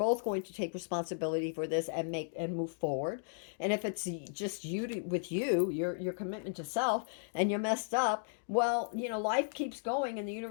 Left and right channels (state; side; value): silent; right; digital silence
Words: going to take responsibility for this and move forward. And if it's just your commitment to self, and you're messed up, well, life keeps going, and the